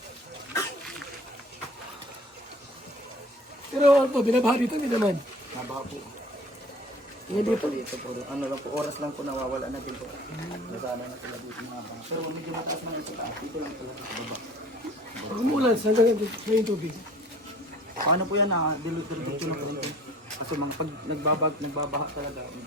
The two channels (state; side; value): normal; both; correlation 0.48